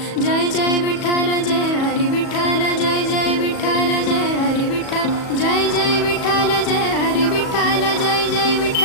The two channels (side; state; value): right; late; 37 ms